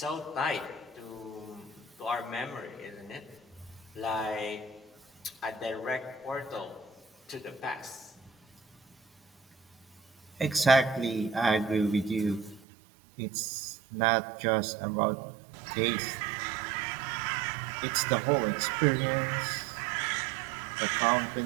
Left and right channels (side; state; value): left; drops out; at 12.6 s